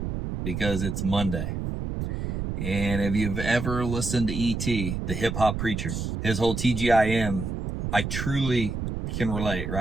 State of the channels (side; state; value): right; noise; rumble, 4 dB below the sound